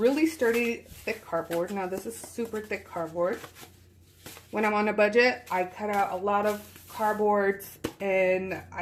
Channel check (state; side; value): identical; both; correlation 1.00